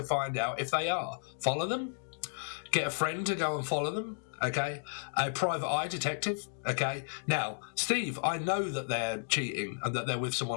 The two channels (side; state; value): right; silent; digital silence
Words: find out if they are? Follow them? Get a friend to go and follow them? Okay, a private eye detective. Okay, now, Steve, I know that they're cheating and that they're with